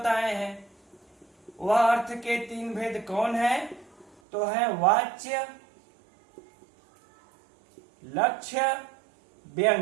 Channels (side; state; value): left; drops out; at 4.2 s